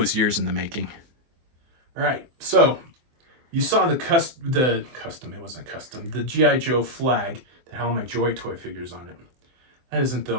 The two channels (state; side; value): late; left; 24 ms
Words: years in the making. All right, so you saw the custom, it wasn't custom, the G.I. Joe flag that had all my Joy Toy figures on it. That isn't the